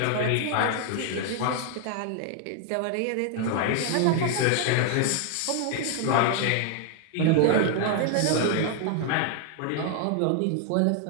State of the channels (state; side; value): different; both; correlation 0.00